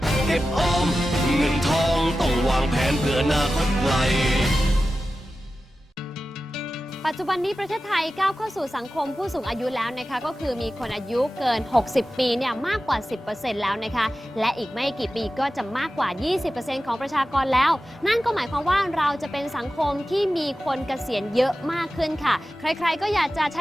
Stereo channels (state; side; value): normal; both; correlation 0.94